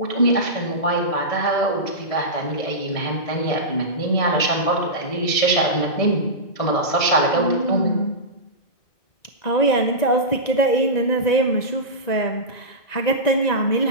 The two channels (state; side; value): late; right; 1.9 ms